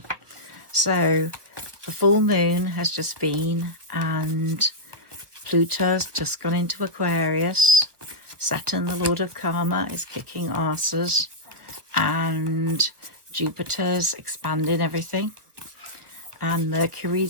So the full moon has just been and Pluto's just gone into Aquarius. Saturn, the Lord of Karma, is kicking asses, and Jupiter's expanding everything, and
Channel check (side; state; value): left; late; 1.5 ms